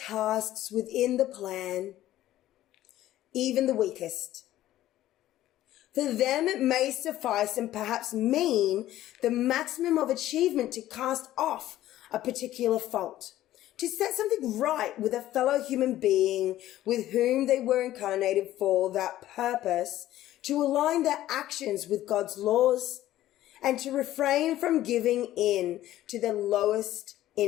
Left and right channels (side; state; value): right; quieter; 14.0 dB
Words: within the plan, even the weakest. For them it may suffice and perhaps mean the maximum of achievement to cast off a particular fault, to set something right with a fellow human being with whom they were incarnated for that purpose, to align their actions with God's laws, and to refrain from giving in to their lowest